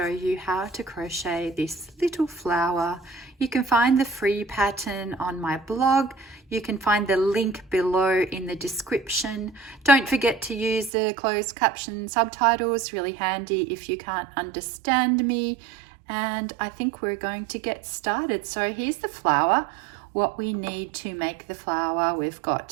you how to crochet this little flower. You can find the free pattern on my blog. You can find the link below in the description. Don't forget to use the closed caption subtitles, really handy if you can't understand me. And I think we're going to get started. So here's the flower. What we need to make the flower, we've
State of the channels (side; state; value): left; drops out; at 10.9 s